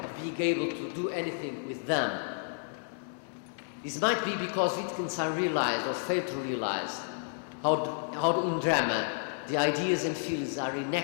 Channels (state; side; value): silent; right; digital silence